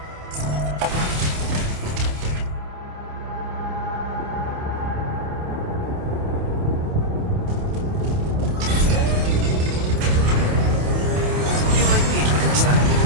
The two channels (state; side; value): late; left; 28 ms